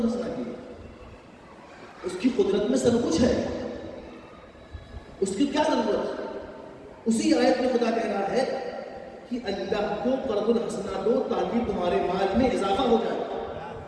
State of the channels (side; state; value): both; identical; correlation 1.00